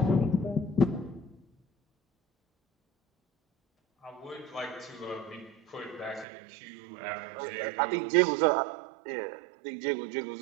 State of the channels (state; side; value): drops out; left; at 6.2 s